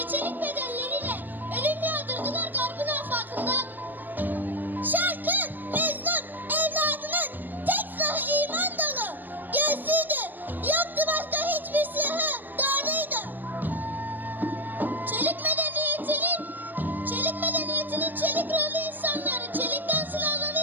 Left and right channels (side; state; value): left; late; 0.090 ms